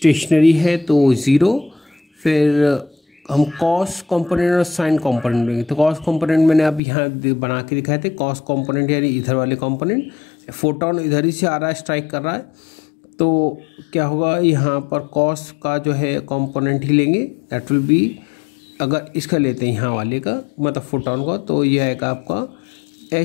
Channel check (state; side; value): drops out; right; at 6.8 s